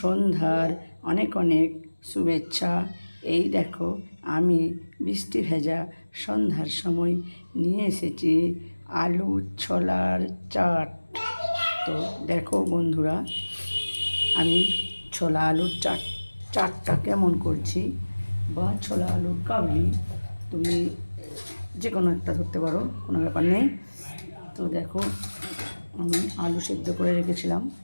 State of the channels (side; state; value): both; inverted; correlation -1.00